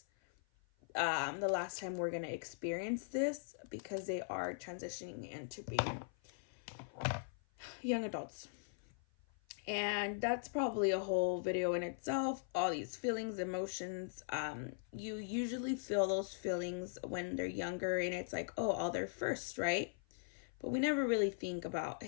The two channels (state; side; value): silent; right; 51 dB below the other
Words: the last time we're gonna experience this, because they are transitioning into being young adults. And that's probably a whole video in itself. All these feelings, emotions, you usually feel those feelings when they're younger, and it's like, oh, all their first, right? But we never really think about,